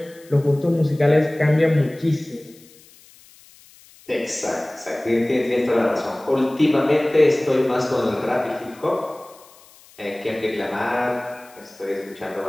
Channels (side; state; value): left; noise; hiss, 25 dB below the sound